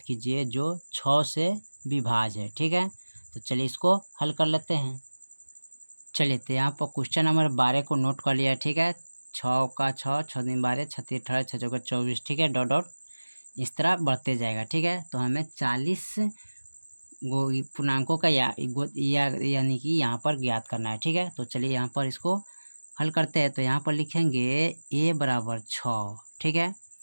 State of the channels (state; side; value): inverted; both; correlation -1.00